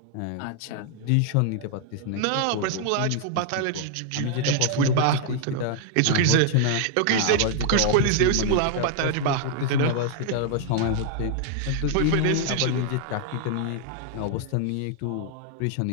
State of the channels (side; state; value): both; different; correlation 0.00